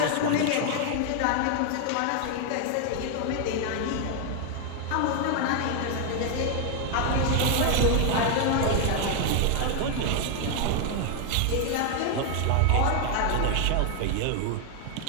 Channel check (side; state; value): both; different; correlation 0.00